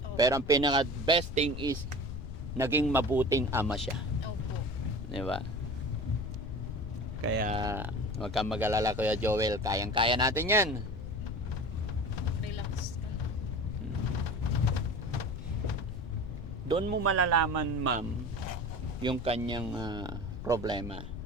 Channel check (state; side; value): noise; left; rumble, 9 dB below the sound